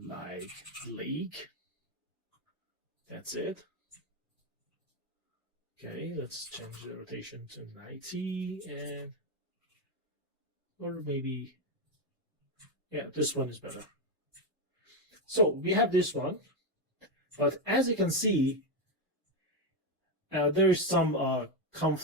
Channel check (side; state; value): both; normal; correlation 0.07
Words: like lake. That's it. Okay, let's change the rotation to 90 and or maybe, yeah, this one is better. So we have this one, but as you can see, there is some